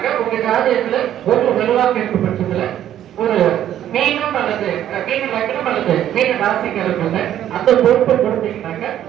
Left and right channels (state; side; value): quieter; left; 11.3 dB